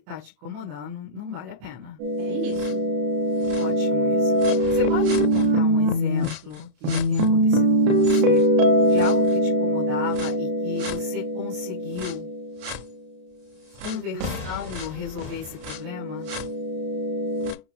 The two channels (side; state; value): left; late; 33 ms